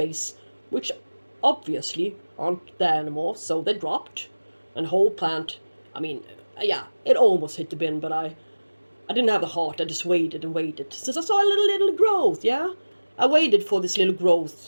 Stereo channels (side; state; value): both; inverted; correlation -1.00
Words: which obviously aren't there anymore, so they dropped. And whole plant, I mean, yeah, it almost hit the bin, but I I didn't have the heart, I just waited and waited. Since I saw a little growth, yeah? I waited for this little